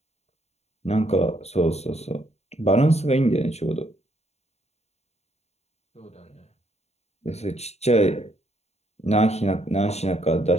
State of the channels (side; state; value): right; late; 0.31 ms